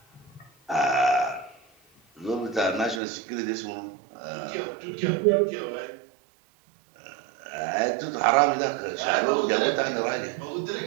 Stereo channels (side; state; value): left; drops out; at 3.0 s